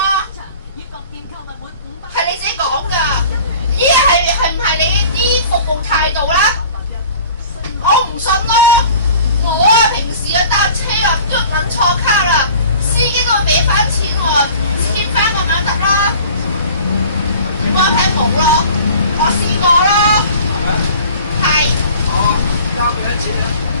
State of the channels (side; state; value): both; inverted; correlation -0.46